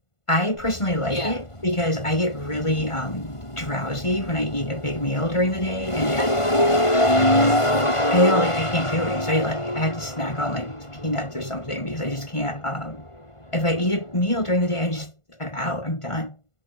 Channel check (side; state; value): right; late; 1.5 ms